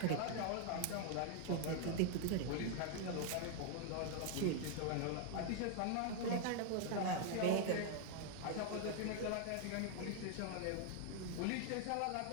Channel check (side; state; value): both; different; correlation 0.00